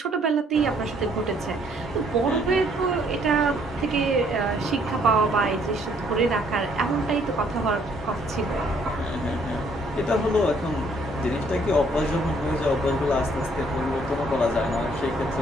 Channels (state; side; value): normal; both; correlation 0.65